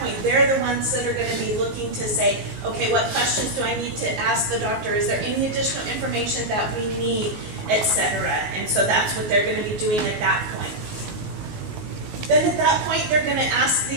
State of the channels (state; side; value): late; left; 19 ms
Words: they're the ones that are going to be looking to say, okay, what questions do I need to ask the doctor? Is there any additional information that we need, etc.? And so that's what they're going to be doing at that point. Then at that point, they're going to ask